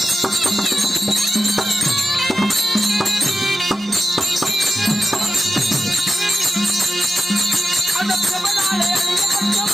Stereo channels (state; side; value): normal; both; correlation 0.90